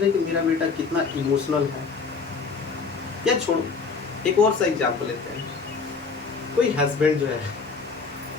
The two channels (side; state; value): right; quieter; 4.9 dB